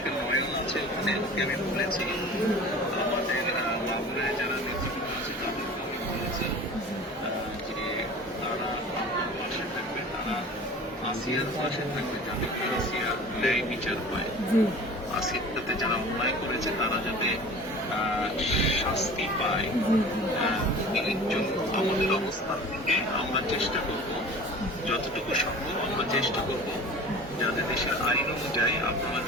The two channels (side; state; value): both; normal; correlation 0.41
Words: করে নয়ন আছে ওখানে, ওকে আমি বলেছি। আমাদের মাগুরায় যারা নেতৃবৃন্দ আছে তাদেরকে আমি বলেছি যে তারা আমার পাশে থাকবে, তারা আসিয়ার পাশে থাকবে, যাতে আসিয়ার ন্যায় বিচার হয়। জি আসিয়ার সাথে যারা অন্যায় করেছে তারা যাতে শাস্তি পায়। এর জন্য আমাদের অবস্থান থেকে আমরা চেষ্টা করব, যতটুকু সম্ভব আমরা চেষ্টা করব যাতে দেশের আইন অনুযায়ী আপনারা